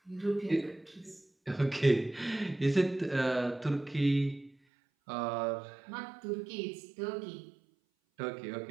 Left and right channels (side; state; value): left; drops out; at 4.5 s